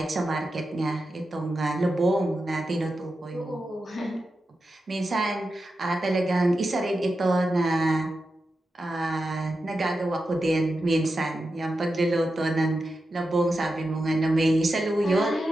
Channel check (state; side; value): normal; both; correlation 0.90